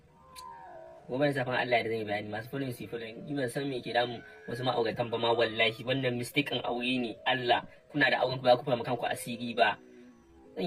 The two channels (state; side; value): identical; both; correlation 1.00